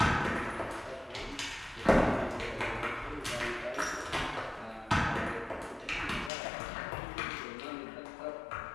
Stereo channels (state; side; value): drops out; right; at 6.3 s